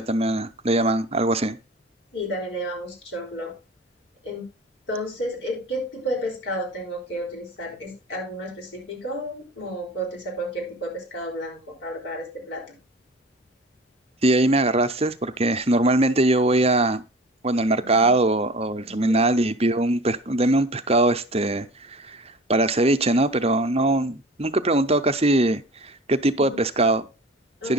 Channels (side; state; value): both; normal; correlation 0.40